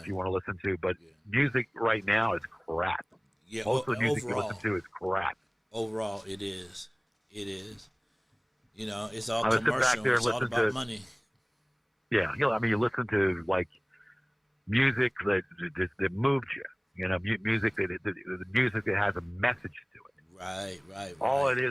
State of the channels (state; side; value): identical; both; correlation 1.00